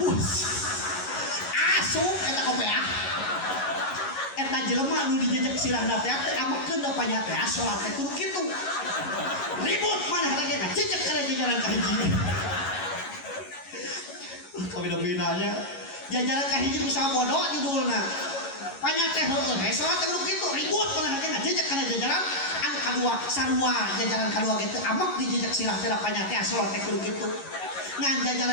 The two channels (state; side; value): late; right; 11 ms